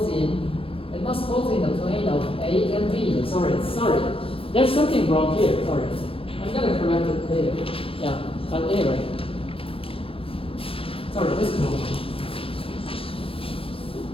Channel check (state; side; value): late; right; 0.27 ms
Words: in the plane of A and B. Sorry. There's something wrong here. Sorry. I'm gonna correct it later. Yeah. But anyway. Sorry, this is wrong.